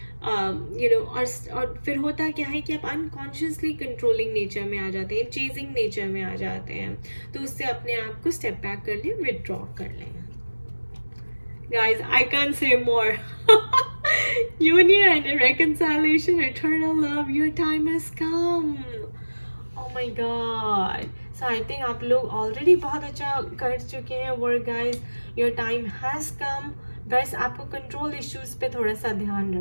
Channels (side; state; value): both; inverted; correlation -1.00